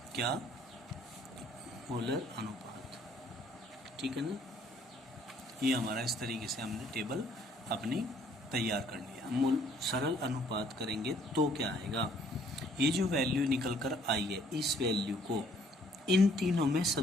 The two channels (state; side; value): normal; both; correlation 0.62